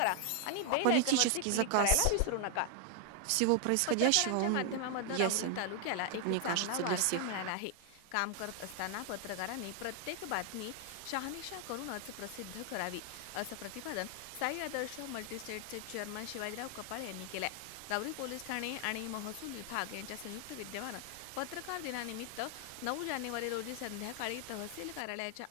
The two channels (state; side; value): different; both; correlation 0.00